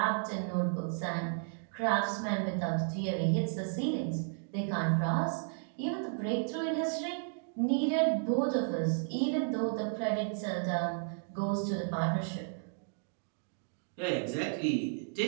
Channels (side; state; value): left; silent; digital silence